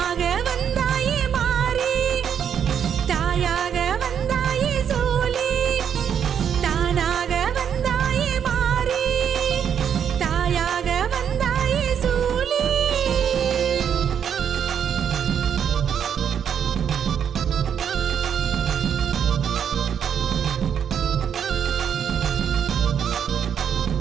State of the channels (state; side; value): quieter; left; 8.2 dB